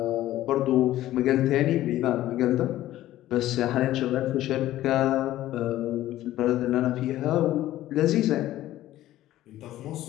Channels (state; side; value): quieter; right; 14.4 dB